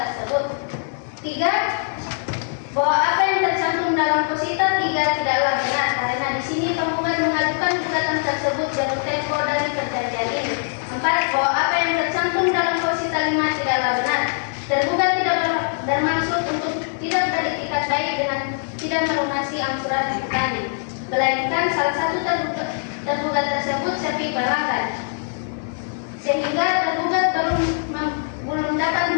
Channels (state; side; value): silent; right; digital silence